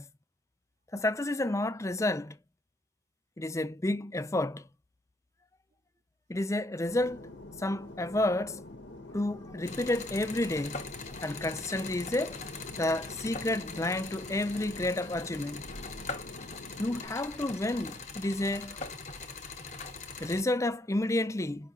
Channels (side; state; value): both; normal; correlation 0.69